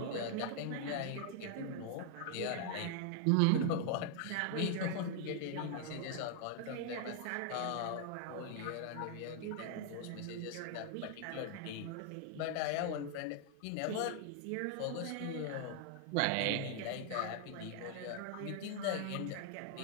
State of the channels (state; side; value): different; both; correlation -0.01